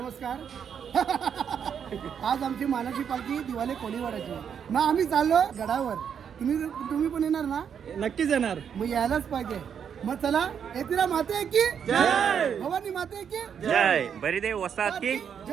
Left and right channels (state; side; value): quieter; left; 7.8 dB